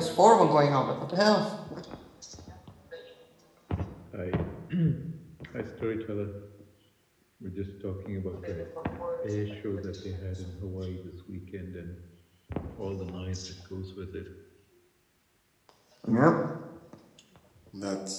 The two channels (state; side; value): identical; both; correlation 1.00